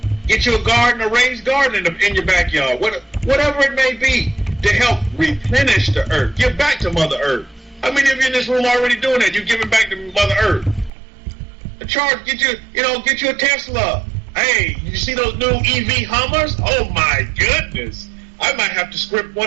Get you a garden, a raised garden in your backyard. Whatever it may be, to help replenish the earth. Give back to Mother Earth. How many of you in this room already doing that? You're giving back to Mother Earth. Get you a Tesla. Hey, you see those new EV Hummers? Oh my goodness. I might have to script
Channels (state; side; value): drops out; left; at 10.9 s